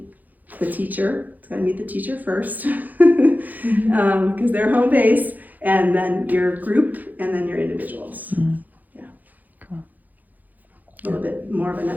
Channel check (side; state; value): left; late; 0.082 ms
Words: the teacher. It's got to meet the teacher first, because they're home base, and then your group, and then your individuals. Yeah. Cool. A little bit more of a